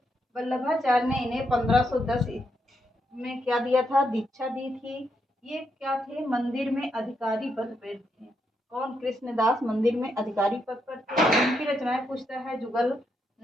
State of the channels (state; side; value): normal; both; correlation 0.80